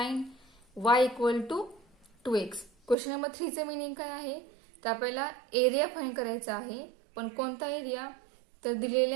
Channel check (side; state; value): left; drops out; at 3.0 s